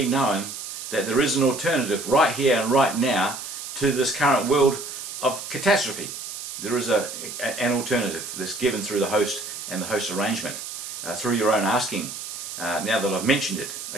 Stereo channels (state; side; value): noise; right; hiss, 8 dB below the sound